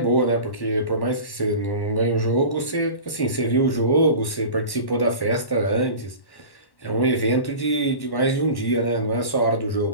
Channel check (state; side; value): late; right; 1.1 ms